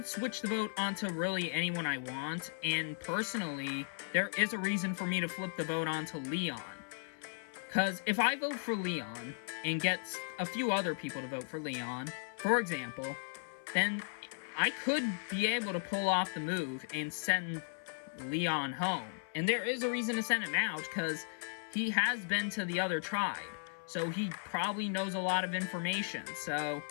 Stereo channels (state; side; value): silent; right; 54 dB below the other